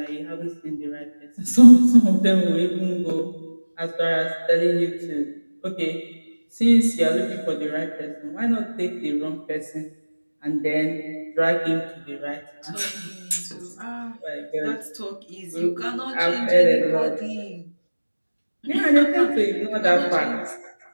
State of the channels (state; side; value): inverted; both; correlation -1.00